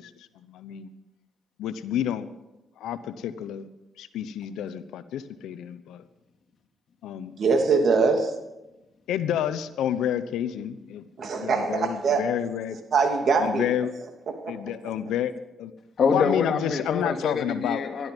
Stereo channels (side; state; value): both; normal; correlation 0.63